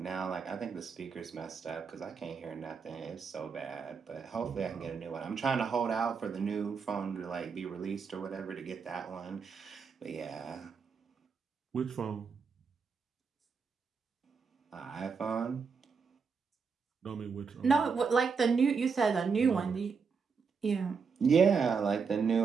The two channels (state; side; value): quieter; left; 5.6 dB